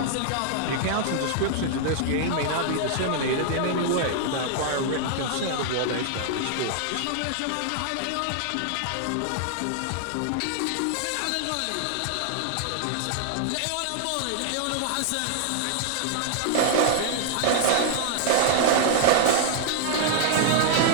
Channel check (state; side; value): different; both; correlation 0.00